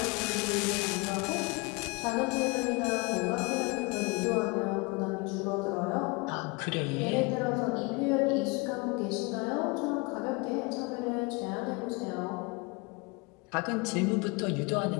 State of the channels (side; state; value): right; quieter; 27.7 dB